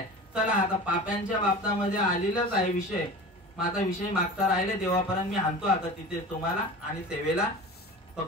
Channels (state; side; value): normal; both; correlation 0.35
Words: चला आता पाप्यांच्या बाबतामध्ये आलेलाच आहे विषय. माझा विषय मागता राहिले देवापर्यंत मी आणतो आता तिथे तुम्हाला. आणि सेवेला